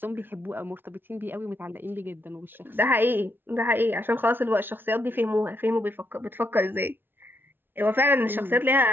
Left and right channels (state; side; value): late; left; 0.10 ms